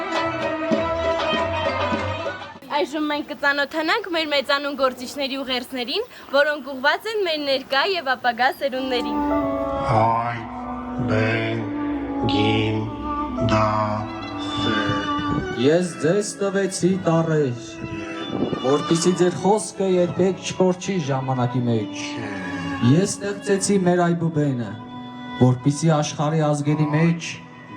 Այժմ մենք կծանոթանանք մեր մեծանուն գործիչների ուղերձներին, որոնք ուղղված են մեր ներկա եւ ապագա սերունդներին։ Հայ, բեն, գին, դա, Ես ձեզ տվեցի տառեր, որպեսզի ձեր խոսքը երբեք չկորչի ժամանակի մեջ։ Ես ստեղծեցի մեր այբուբենը, որպեսզի աշխարհի ազգերի մեջ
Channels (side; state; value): both; identical; correlation 1.00